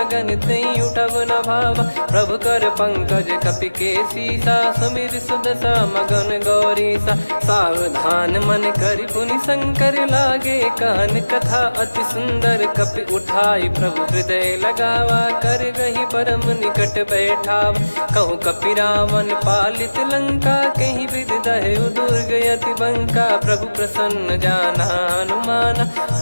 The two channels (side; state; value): both; inverted; correlation -1.00